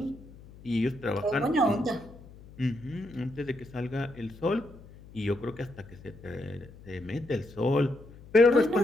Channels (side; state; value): left; noise; hum, 20 dB below the sound